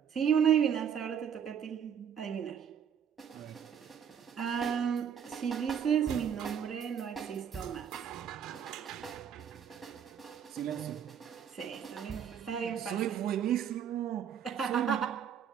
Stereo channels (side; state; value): left; quieter; 8.1 dB